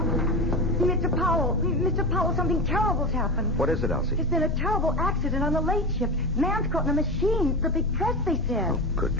Mr. Powell, something terrible's happened. What is it, Elsie? There's been a terrible accident on the late shift. Man's caught in a machine. The big press, they said. Oh, good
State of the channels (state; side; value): normal; both; correlation 0.22